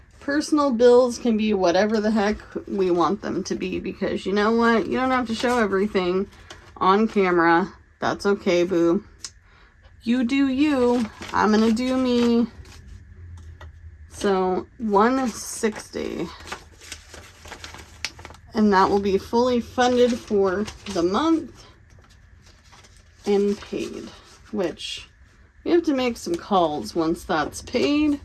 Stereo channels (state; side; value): identical; both; correlation 1.00